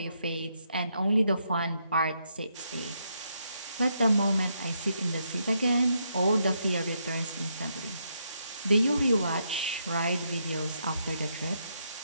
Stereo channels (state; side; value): inverted; both; correlation -0.78